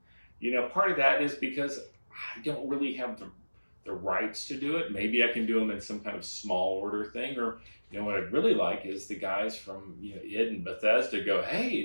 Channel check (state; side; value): inverted; both; correlation -1.00